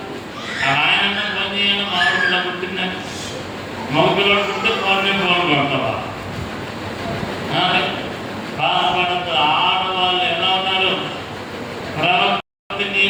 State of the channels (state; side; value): identical; both; correlation 1.00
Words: ఆయనన్నా ఫోన్ చేయాలా. మామూలుగా పుట్టిందని మగపిల్లడు పుట్టితే ఫోన్ కొడతావా? బాధపడద్దు. ఆడవాళ్ళు ఎలా ఉన్నారు? ప్రవక్త